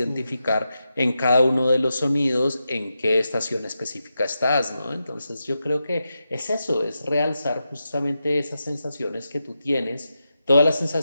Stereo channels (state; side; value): inverted; both; correlation -0.88